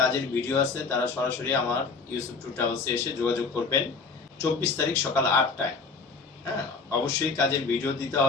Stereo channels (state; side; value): quieter; right; 4.7 dB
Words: ভিডিও আছে তারা সরাসরি আমার ইউসুফ ট্যুর ট্রাভেলসে এসে যোগাযোগ করবেন ২৪ তারিখ সকাল ৮টায়। হ্যাঁ, অবশ্যই কাজের ভিডিও দিতে